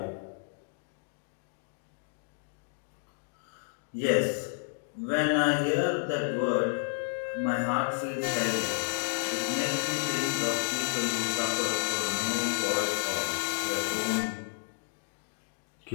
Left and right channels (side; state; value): right; silent; digital silence